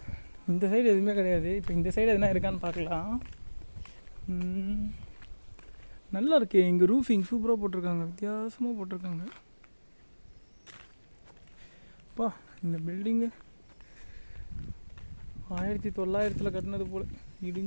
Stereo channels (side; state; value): both; inverted; correlation -1.00